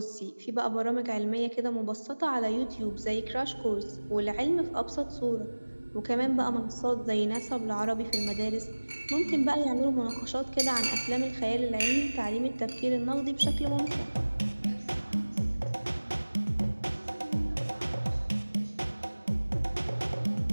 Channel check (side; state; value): both; inverted; correlation -1.00